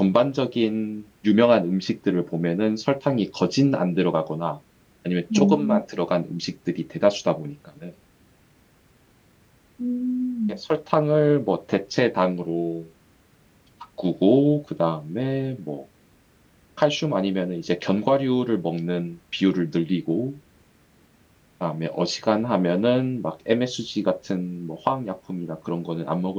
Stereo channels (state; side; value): identical; both; correlation 1.00